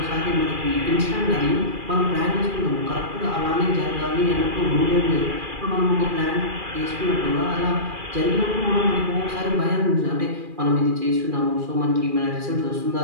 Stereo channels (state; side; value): late; left; 2.4 ms